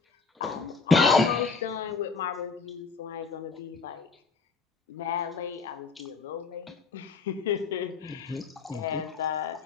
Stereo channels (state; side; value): quieter; right; 4.7 dB